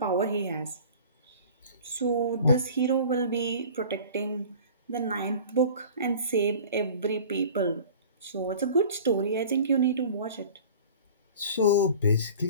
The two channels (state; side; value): inverted; both; correlation -0.43